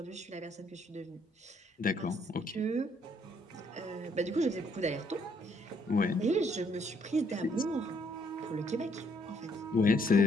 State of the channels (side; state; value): both; normal; correlation 0.68